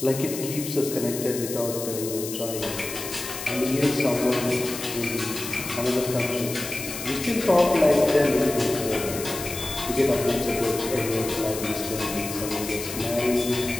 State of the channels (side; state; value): left; noise; hiss, 8 dB below the sound